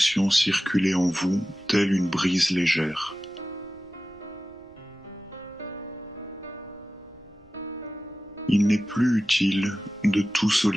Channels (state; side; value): noise; right; rumble, 28 dB below the sound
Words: circuler en vous telle une brise légère. Il n'est plus utile de tout